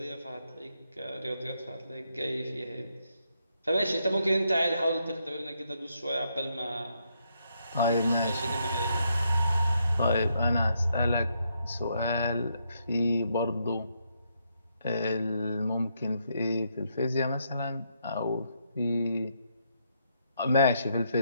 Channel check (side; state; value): both; inverted; correlation -0.77